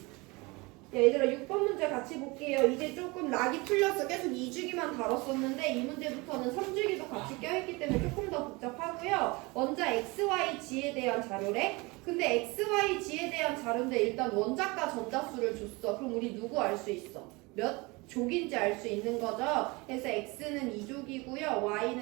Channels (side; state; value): left; quieter; 25.2 dB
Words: 얘들아 6번 문제 같이 볼게요. 이제 조금 락이 풀려서 계속 2주기만 다뤘었는데 이 문제부터는 3주기도 같이 껴있기 때문에 조금 더 복잡하고요. 먼저 XYG에 대한 자료래. 근데 XYG에 대한 자료인데 일단 원자과 전자수를 줬어. 그럼 우리 누구 알 수 있어? 몇 족인지 알 수 있는 거죠. 그래서 X는 2족이고요.